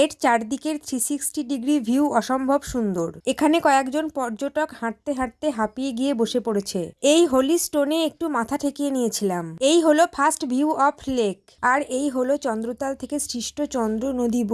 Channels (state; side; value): identical; both; correlation 1.00